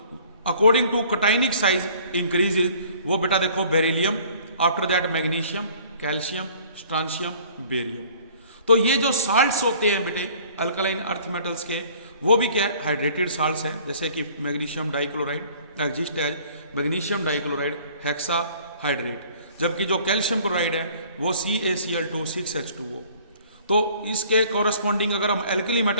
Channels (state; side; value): inverted; both; correlation -0.53